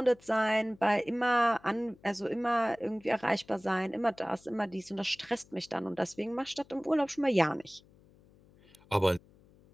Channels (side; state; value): left; noise; hum, 28 dB below the sound